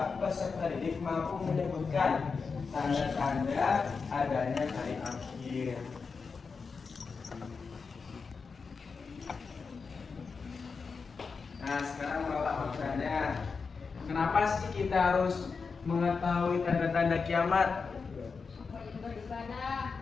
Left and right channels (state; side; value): quieter; right; 5.0 dB